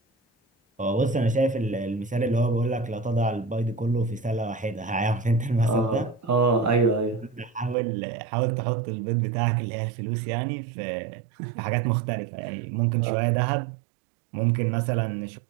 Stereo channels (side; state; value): left; drops out; at 7.8 s